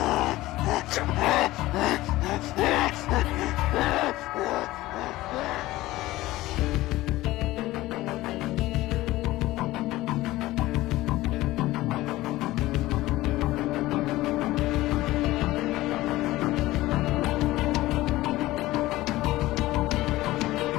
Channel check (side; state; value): right; quieter; 17.5 dB